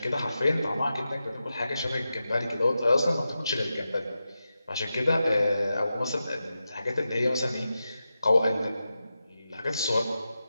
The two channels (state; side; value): inverted; both; correlation -0.91